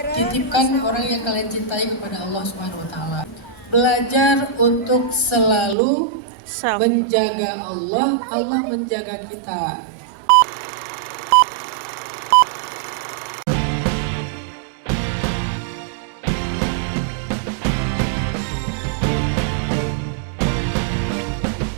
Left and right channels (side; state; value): left; drops out; at 5.8 s